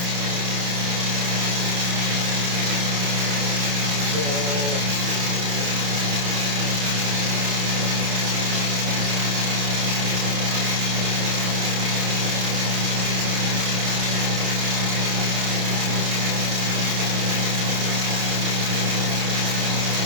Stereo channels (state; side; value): late; left; 28 ms